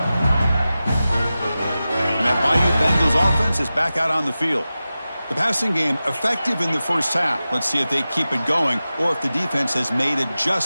And that Bayou Bengals offense is back out on the field. The passing game effective in the first half. Let's see if they keep it going or if the defense has made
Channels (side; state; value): both; inverted; correlation -0.95